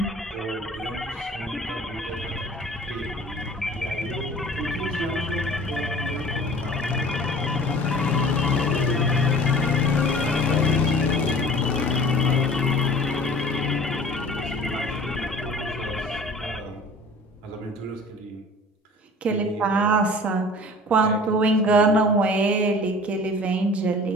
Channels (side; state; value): both; normal; correlation 0.45